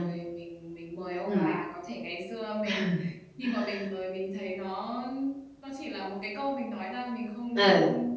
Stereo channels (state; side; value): identical; both; correlation 1.00